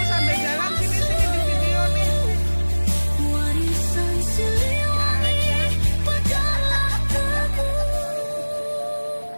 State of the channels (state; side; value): inverted; both; correlation -1.00